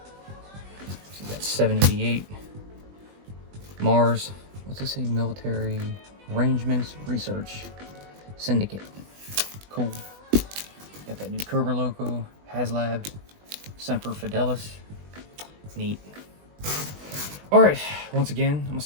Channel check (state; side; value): late; left; 20 ms